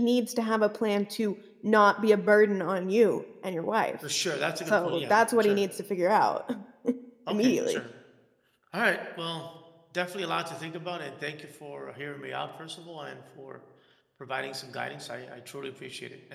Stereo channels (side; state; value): both; identical; correlation 1.00